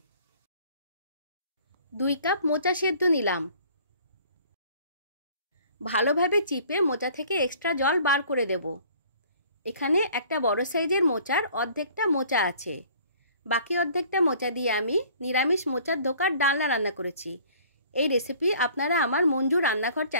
2 কাপ মোচা সেদ্ধ নিলাম। ভালোভাবে চিপে মোচা থেকে এক্সট্রা জল বার করে দেব। এখানে একটা বড় সাইজের মোচার অর্ধেকটা মোচা আছে। বাকি অর্ধেকটা মোচা দিয়ে আমি নিরামিষ মোচার ধোকার ডালনা রান্না করেছি। এই রেসিপি আপনারা আমার মঞ্জু রান্নাঘর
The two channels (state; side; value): inverted; both; correlation -0.53